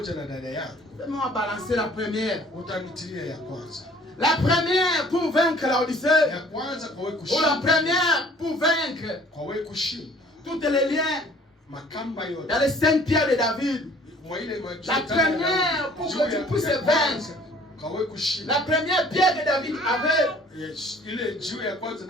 balancer la première. La première pour vaincre l'Odyssée. Ou la première pour vaincre tous les liens. Dans les 5 pierres de David. La première pour que tu puisses vaincre. La première pierre que David avait,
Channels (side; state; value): both; normal; correlation 0.54